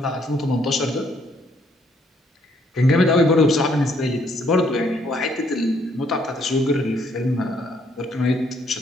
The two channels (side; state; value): both; normal; correlation 0.68